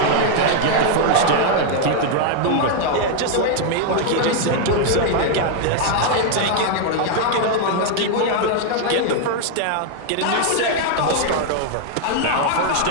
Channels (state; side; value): different; both; correlation 0.00